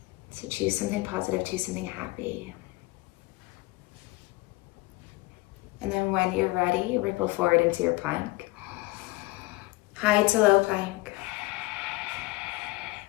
So choose something positive, choose something happy. And then when you're ready, ripple forward into your plank. High to low plank.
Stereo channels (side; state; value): right; quieter; 21.7 dB